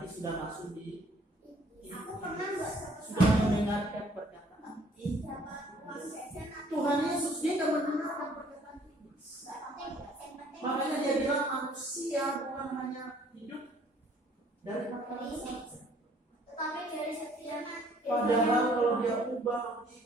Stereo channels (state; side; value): normal; both; correlation 0.59